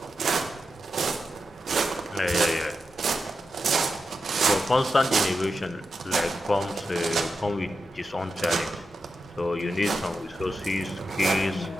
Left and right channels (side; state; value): both; normal; correlation 0.88